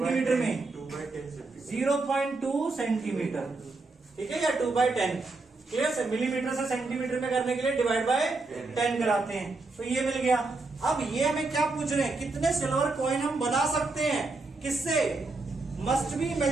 में? 0.2 सेंटीमीटर, ठीक है, या 2/10। क्लियर से मिलीमीटर से सेंटीमीटर में करने के लिए डिवाइड बाय 10 कराते हैं, तो ये मिल गया। अब ये हमें क्या पूछ रहे हैं? कितने सिल्वर कॉइन हम बना सकते हैं? किससे? Must be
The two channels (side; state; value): left; quieter; 3.5 dB